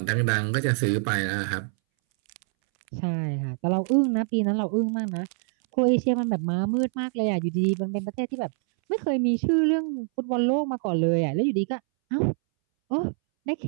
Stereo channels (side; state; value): left; silent; 62 dB below the other